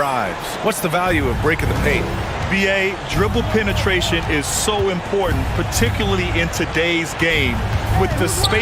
What's the value of breaking the paint? BA, dribble penetration is so important, particularly in today's game. With the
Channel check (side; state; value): both; identical; correlation 1.00